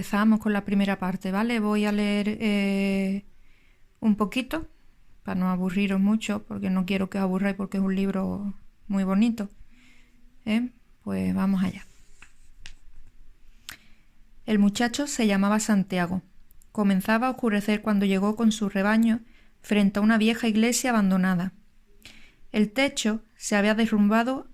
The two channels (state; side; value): identical; both; correlation 1.00